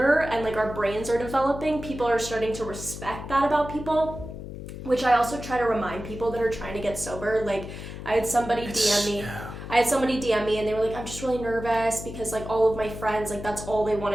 and like our brains are developing, people are starting to respect that about people, which I also try to remind people that are trying to get sober. Like I had somebody DM me and they were like, I'm just really nervous because like all of my friends, like that's all they want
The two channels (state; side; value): noise; left; hum, 10 dB below the sound